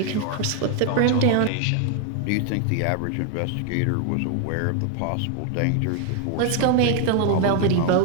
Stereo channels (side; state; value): both; different; correlation 0.00